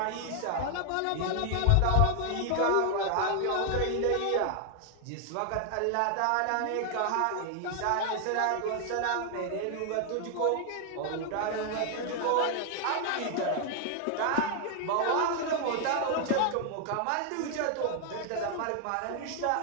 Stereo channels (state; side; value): different; both; correlation 0.00